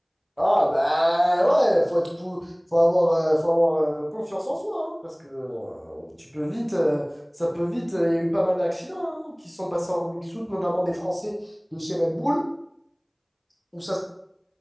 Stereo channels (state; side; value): identical; both; correlation 1.00